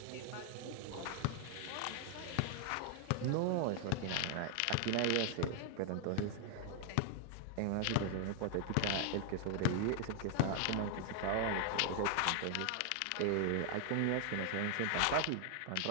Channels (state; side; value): different; both; correlation 0.00